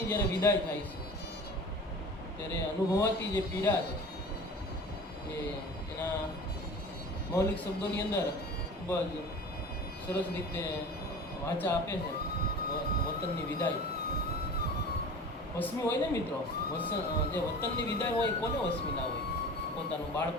જ્યારે વિદાય થાય છે ત્યારે અનુભવાતી જે પીડા છે એ એના મૌલિક શબ્દોની અંદર ખૂબ જ સરસ રીતે વાચા આપે છે. વતનની વિદાય વસમી હોય ને મિત્રો, જે વતનની વિદાય હોય કોને વસમી ના હોય? પોતાનું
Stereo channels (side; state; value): both; normal; correlation 0.38